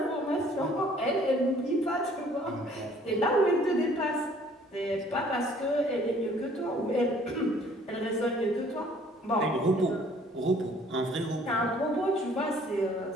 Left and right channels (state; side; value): normal; both; correlation 0.57